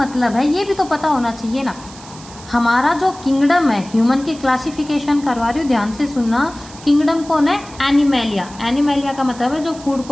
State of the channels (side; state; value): right; noise; hiss, 19 dB below the sound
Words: है ये भी तो पता होना चाहिए ना। हमारा जो किंगडम है, ह्यूमन की क्लासिफिकेशन करवा रही हूँ, ध्यान से सुनना। किंगडम कौन है? एनिमेलिया। एनिमेलिया का मतलब है जो फूड